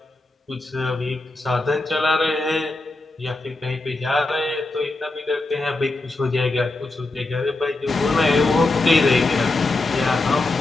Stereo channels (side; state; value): right; quieter; 3.0 dB